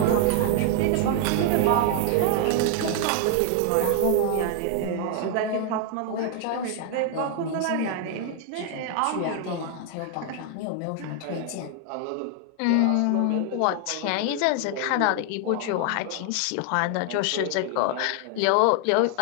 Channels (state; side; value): different; both; correlation 0.00